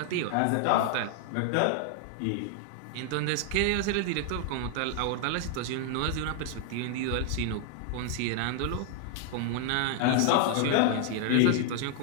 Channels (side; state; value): both; different; correlation 0.00